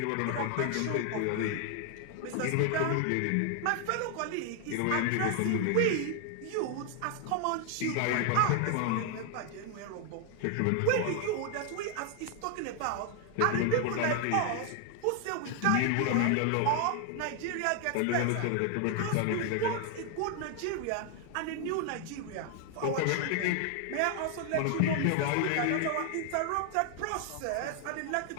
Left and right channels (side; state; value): both; different; correlation 0.00